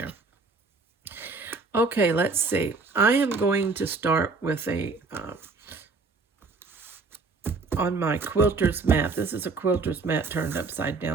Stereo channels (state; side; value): quieter; left; 4.1 dB